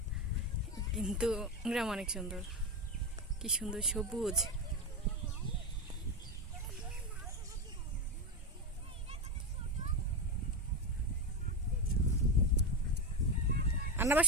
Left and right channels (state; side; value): normal; both; correlation 0.14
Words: কিন্তু গ্রাম অনেক সুন্দর। কি সুন্দর সবুজ। আবার